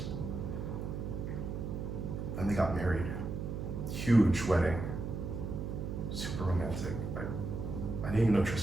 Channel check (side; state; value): right; noise; hum, 4 dB below the sound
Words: And they got married. Huge wedding. Super romantic. I didn't even know